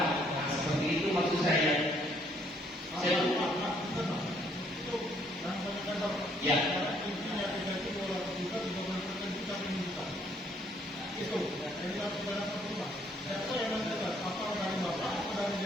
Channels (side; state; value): both; normal; correlation 0.67